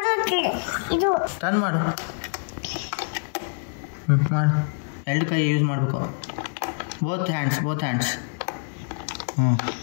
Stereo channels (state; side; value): silent; right; digital silence